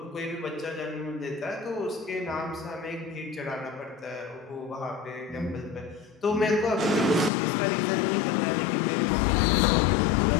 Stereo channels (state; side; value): drops out; right; at 7.3 s